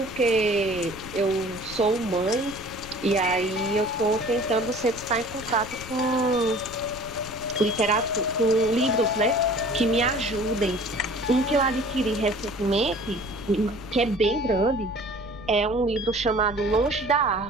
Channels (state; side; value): noise; left; rumble, 15 dB below the sound